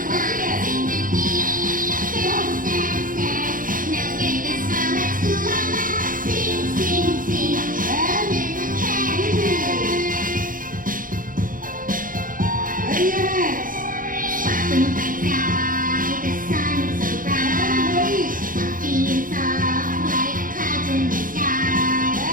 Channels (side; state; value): left; late; 0.40 ms